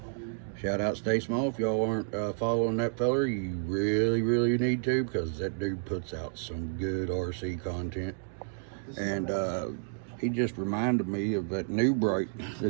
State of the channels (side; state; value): left; silent; digital silence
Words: Shout out Stay Small. If y'all aren't following that feller, you really need to, because that dude puts out some good RC content. And he just reminded me of that new Bright